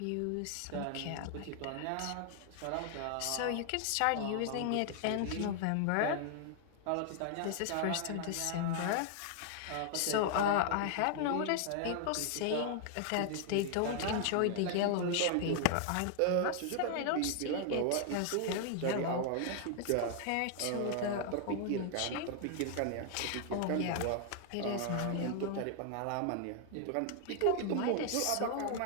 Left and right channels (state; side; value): different; both; correlation 0.00